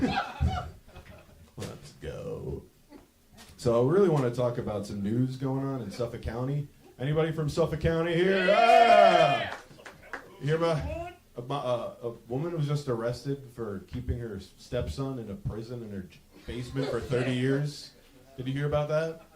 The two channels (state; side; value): identical; both; correlation 1.00